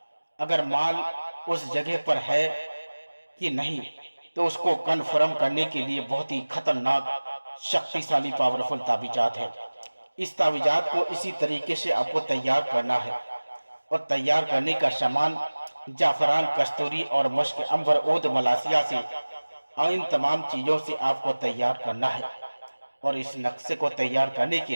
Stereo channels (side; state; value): both; inverted; correlation -1.00